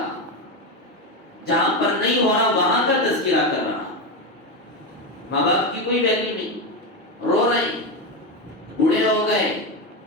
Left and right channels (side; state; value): both; normal; correlation 0.14